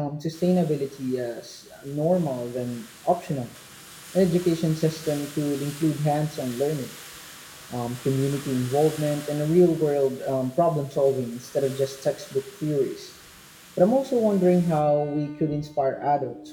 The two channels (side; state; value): both; identical; correlation 1.00